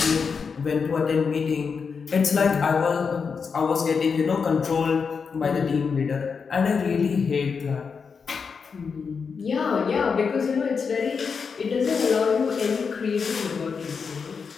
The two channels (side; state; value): right; quieter; 5.6 dB